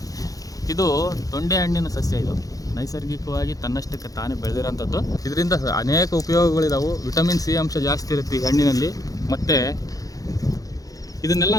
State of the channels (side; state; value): right; late; 0.17 ms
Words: ಇದು ತೊಂಡೆ ಹಣ್ಣಿನ ಸಸ್ಯ. ಇದು ನೈಸರ್ಗಿಕವಾಗಿ ತನ್ನಷ್ಟಕ್ಕೆ ತಾನೇ ಬೆಳೆದಿರೋಂಥದ್ದು. ಇದರಿಂದ ಅನೇಕ ಉಪಯೋಗಗಳಿದಾವೆ. ವಿಟಮಿನ್ ಸಿ ಅಂಶ ಜಾಸ್ತಿ ಇರುತ್ತೆ ಈ ಹಣ್ಣಿನಲ್ಲಿ. ಮತ್ತು ಇದನ್ನೆಲ್ಲ